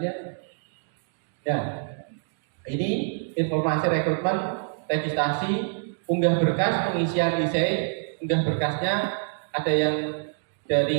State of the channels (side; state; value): left; silent; digital silence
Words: ya. Ini informasi rekrutmen, registrasi, unggah berkas, pengisian IC, unggah berkasnya ada yang